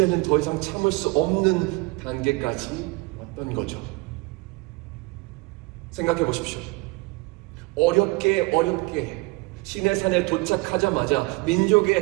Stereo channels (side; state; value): left; quieter; 25.7 dB